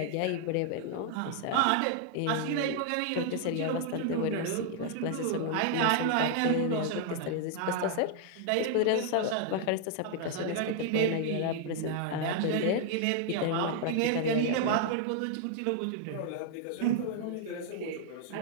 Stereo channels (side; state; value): both; different; correlation 0.00